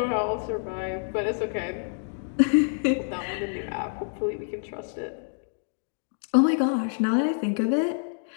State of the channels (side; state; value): right; silent; digital silence